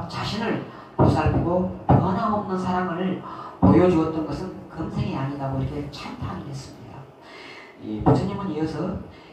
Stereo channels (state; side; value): identical; both; correlation 1.00